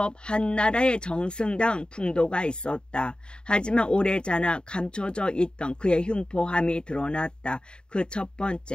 한나라의 정승다운 풍도가 있었다. 하지만 오래전에 감춰져 있던 그의 흉포함이 드러났다. 그 첫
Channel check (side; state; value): right; late; 0.050 ms